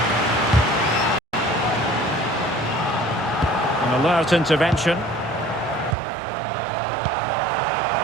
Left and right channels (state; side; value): drops out; left; at 6.0 s